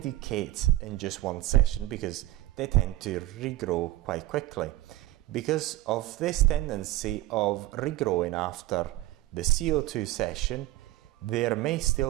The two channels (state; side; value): quieter; left; 16.6 dB